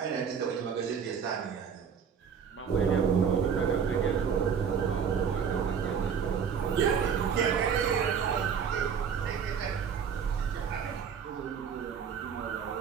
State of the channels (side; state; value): left; quieter; 7.0 dB